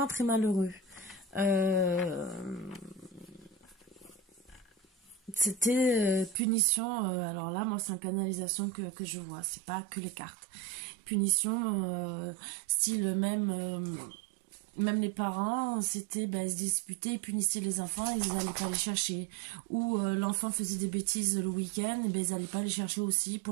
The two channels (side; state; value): left; drops out; at 6.4 s